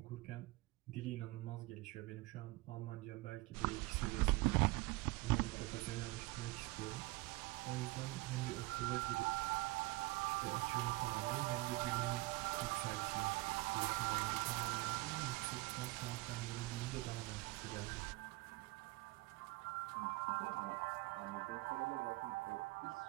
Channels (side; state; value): left; quieter; 21.8 dB